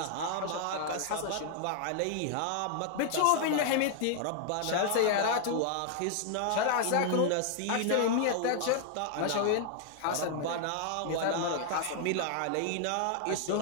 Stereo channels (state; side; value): different; both; correlation 0.00